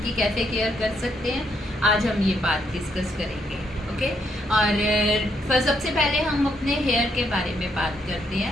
की कैसे केयर कर सकते हैं, आज हम ये बात डिस्कस करेंगे। ओके। और सबसे पहले हम अपने हेयर के बारे में बात करते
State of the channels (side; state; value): both; normal; correlation 0.74